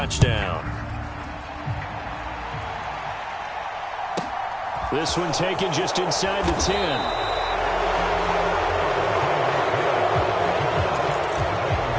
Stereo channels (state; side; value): identical; both; correlation 1.00